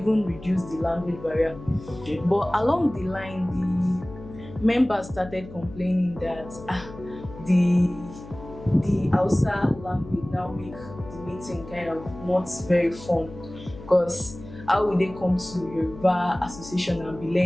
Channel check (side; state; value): left; noise; hum, 16 dB below the sound